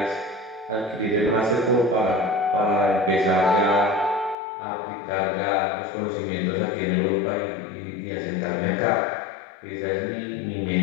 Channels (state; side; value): drops out; right; at 4.4 s